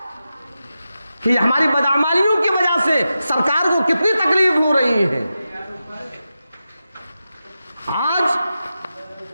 کہ ہماری بدعمالیوں کی وجہ سے سرکار کو کتنی تکلیف ہو رہی ہے؟ آج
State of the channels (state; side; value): inverted; both; correlation -0.91